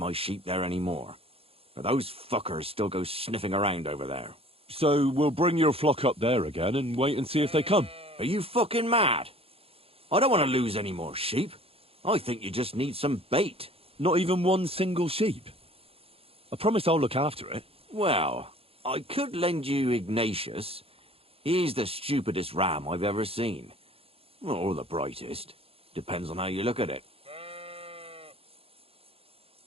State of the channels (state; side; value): late; left; 0.28 ms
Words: sheep there anymore, but those fuckers still go sniffing around over there. So we'll bring your flock up there again and wait and see if they come. Are you fucking mad? I don't want to lose any more sheep. I think you just need some bait. Not even one single sheep? I promise I'll look after it. Well, I could lend you Ignatius. He's the stupidest ram I've ever seen. Or the brightest. Depends on how you look at it.